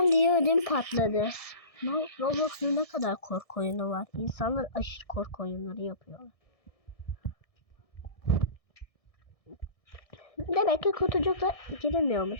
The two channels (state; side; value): late; right; 1.6 ms